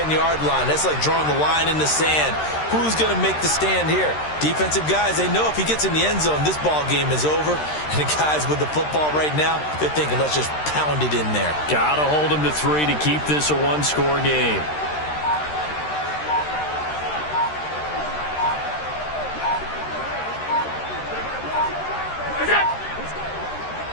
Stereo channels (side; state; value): right; late; 13 ms